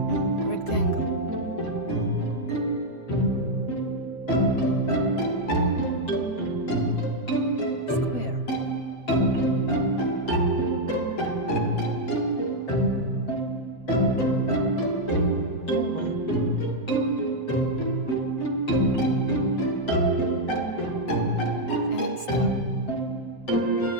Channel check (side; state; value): right; late; 7.8 ms